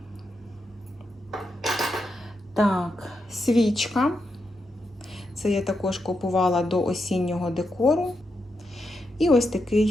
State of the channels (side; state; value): both; normal; correlation 0.84